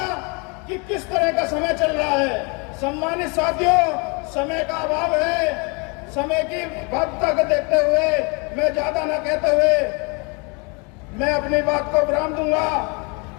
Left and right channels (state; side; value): quieter; right; 32.0 dB